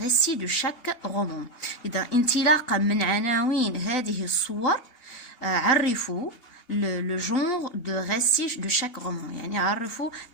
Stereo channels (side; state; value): right; late; 2.8 ms